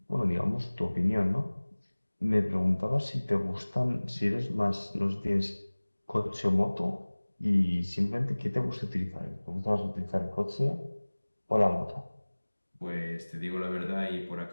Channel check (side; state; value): both; inverted; correlation -1.00